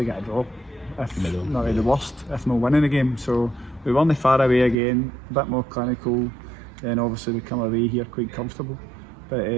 a draw, if not at the worst, if not winning a game. So we won the far away again, a bit more clinical, and obviously we come away here quite comfortable. But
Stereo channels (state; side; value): drops out; left; at 4.8 s